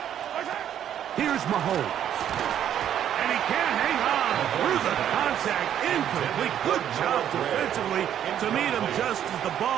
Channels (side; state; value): left; quieter; 10.1 dB